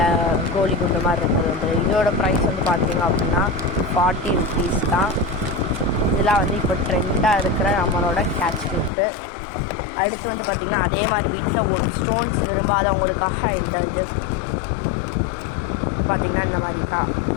கோழி குண்டு மாதிரி இருக்கிறது வந்து. இதோட ப்ரைஸ் வந்து பார்த்திங்க அப்படின்னா 40 rupees தான். இதெல்லாம் வந்து இப்போ ட்ரெண்டாக இருக்கிற நம்மளோட கேட்ச் கிளிப்பு. அடுத்து வந்து பார்த்திங்கன்னா அதே மாதிரி பீட்ஸில் ஒரு ஸ்டோன்ஸ் விரும்பாதவங்களுக்காக இந்த இது பார்த்திங்கன்னா இந்த மாதிரி தான்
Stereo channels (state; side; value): drops out; right; at 8.9 s